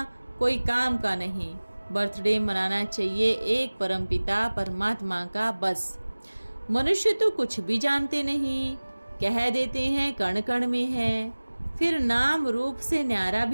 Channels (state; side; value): inverted; both; correlation -1.00